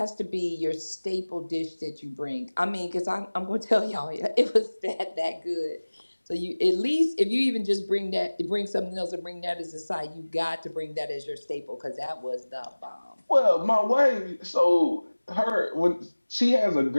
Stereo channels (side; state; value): both; inverted; correlation -1.00